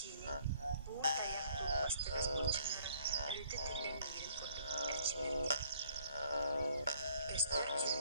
buğur dayak tuğbastırız bulçunları öğüte tüllen mirin kurduk elçilerdi. Göster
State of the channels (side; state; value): both; inverted; correlation -0.62